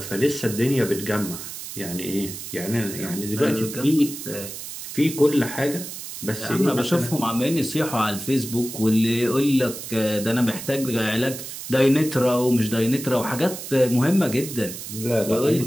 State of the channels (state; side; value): noise; right; hiss, 9 dB below the sound